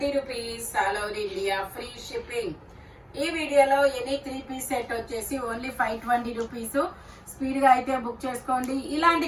rupees all over India, free shipping. ఈ వీడియోలో ఎనీ 3 పీస్ సెట్ వచ్చేసి ఓన్లీ 520 రూపీస్. స్పీడ్ గా అయితే బుక్ చేసుకోండి. ఇలాంటి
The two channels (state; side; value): identical; both; correlation 1.00